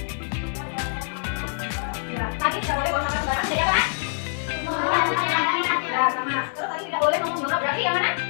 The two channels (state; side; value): silent; right; digital silence